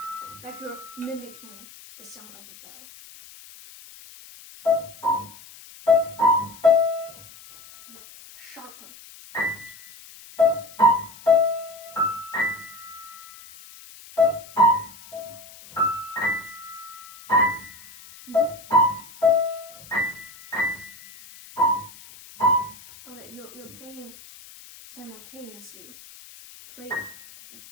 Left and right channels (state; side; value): noise; left; hiss, 20 dB below the sound